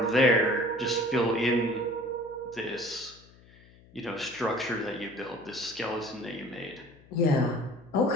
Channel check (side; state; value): left; noise; hum, 25 dB below the sound